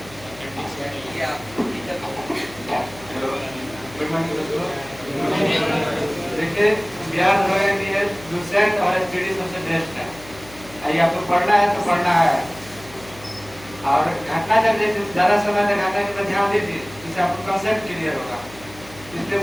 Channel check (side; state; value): left; noise; hum, 20 dB below the sound